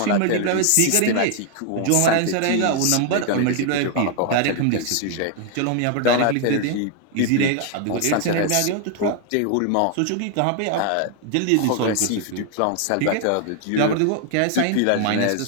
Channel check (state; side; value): different; both; correlation 0.00